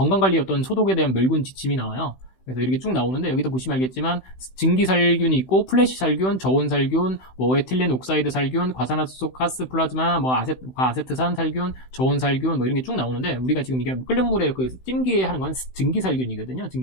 어떤 소독에 대한 멸균 지침이 나와요. 그래서 이렇게 쭉 나오는데 여기도 보시면 알겠지만 증기살균이 있고 플래시 살균, 저온살균, 에틸렌 옥사이드 살균, 과산화수소 가스 플라즈마, 과아세트산 살균, 저온살균 이런 게 쭉 나오는데 우리가 지금 이게 끓는 물에 그 찜기에 하는 건 증기살균이거든요.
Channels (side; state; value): right; late; 16 ms